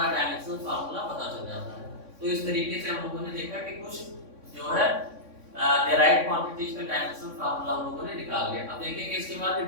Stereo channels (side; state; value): left; late; 3.6 ms